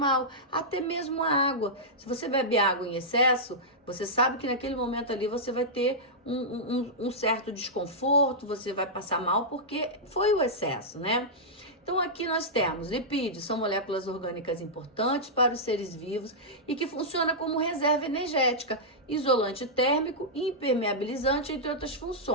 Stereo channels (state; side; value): normal; both; correlation -0.11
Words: até mesmo a água. Se você bebe água em excesso, você sabe que naquele momento ali você vai ter um certo desconforto, você vai passar mal porque foi o excesso, né? Então aqui nós temos lipídios, são moléculas orgânicas importantes para os seres vivos e que funcionam como reserva energética, isolante térmico e impermeabilizante, entre outras